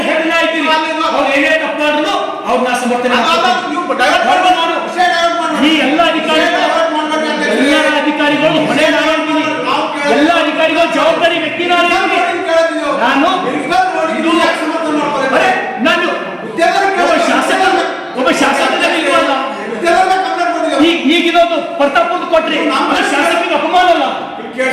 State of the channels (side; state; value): both; identical; correlation 1.00